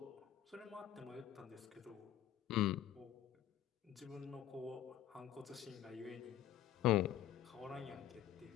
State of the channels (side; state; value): right; quieter; 11.6 dB